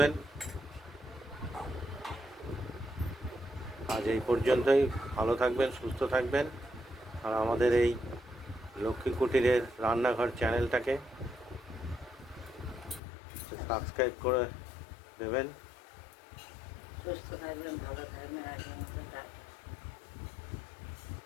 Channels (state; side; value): drops out; right; at 13.0 s